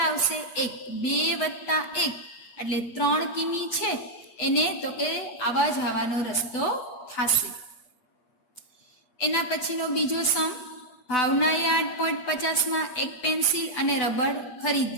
આવશે? 1. 2 વત્તા 1 એટલે 3 કિમી છે એને તો કે આવા જવાનો રસ્તો થશે. એના પછીનો બીજો સમ. ભાવનાએ 8.50 એક પેન્સિલ અને રબર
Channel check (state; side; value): late; right; 8.4 ms